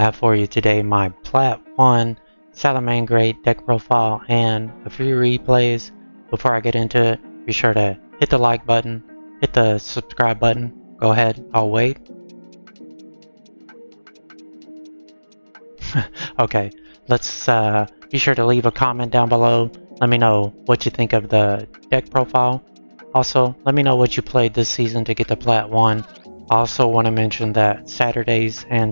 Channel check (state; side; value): inverted; both; correlation -1.00